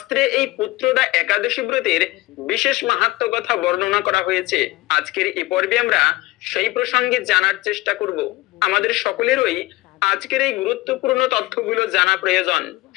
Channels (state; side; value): quieter; right; 19.4 dB